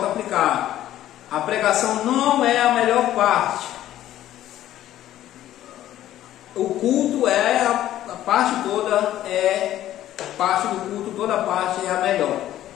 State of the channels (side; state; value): right; quieter; 13.0 dB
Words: a aplicar. A pregação não é a melhor parte. O culto é a parte toda, parte do culto, toda a parte é a melhor.